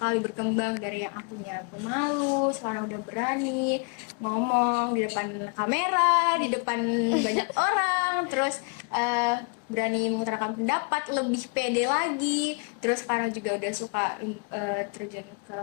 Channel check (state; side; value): quieter; right; 35.6 dB